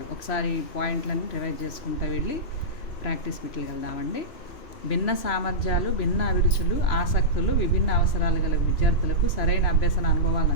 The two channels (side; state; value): right; late; 3.0 ms